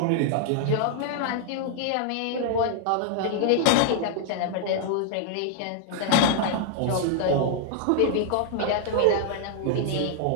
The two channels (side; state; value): both; different; correlation 0.00